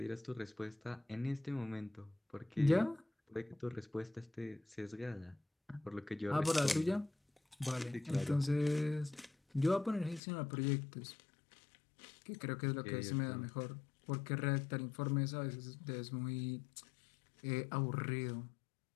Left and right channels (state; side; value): drops out; right; at 10.2 s